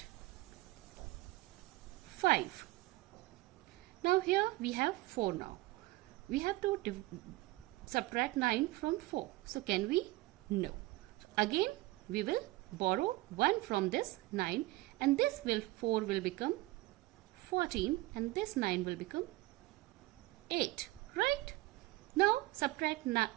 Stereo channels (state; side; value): quieter; left; 19.6 dB